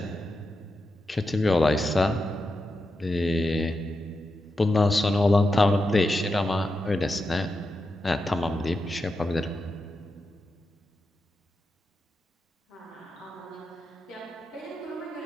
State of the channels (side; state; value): both; normal; correlation 0.88